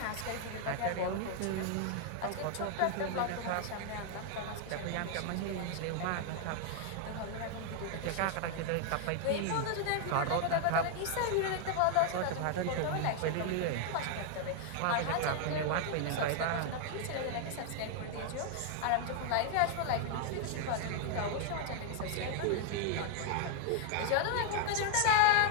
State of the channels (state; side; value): different; both; correlation 0.00